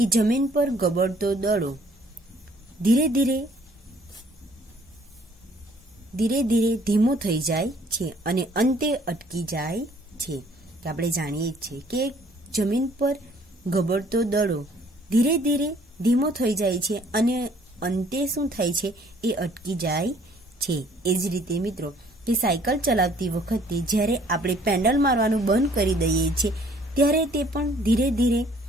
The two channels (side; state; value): both; normal; correlation 0.59